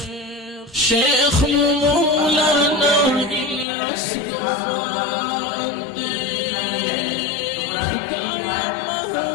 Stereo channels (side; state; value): right; drops out; at 3.7 s